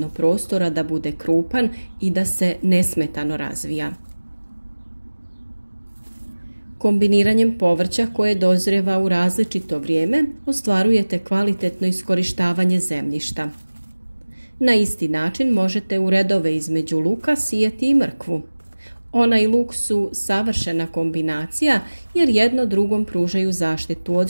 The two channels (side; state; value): both; inverted; correlation -1.00